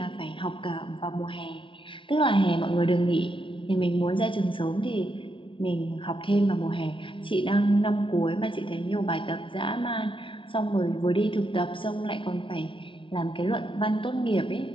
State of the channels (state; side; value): late; right; 0.25 ms